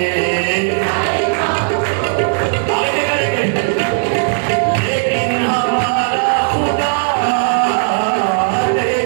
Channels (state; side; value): silent; left; digital silence